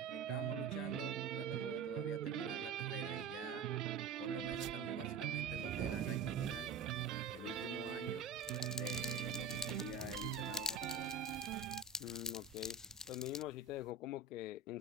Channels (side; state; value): left; quieter; 4.7 dB